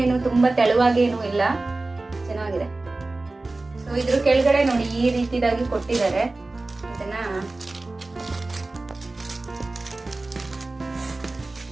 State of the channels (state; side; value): quieter; left; 3.2 dB